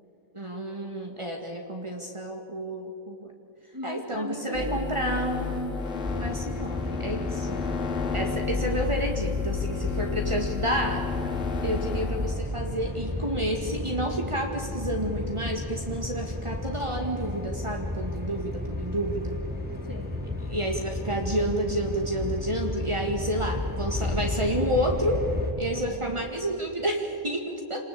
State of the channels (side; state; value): left; late; 1.4 ms